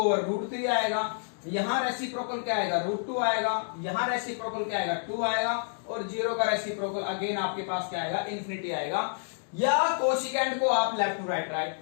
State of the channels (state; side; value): silent; right; digital silence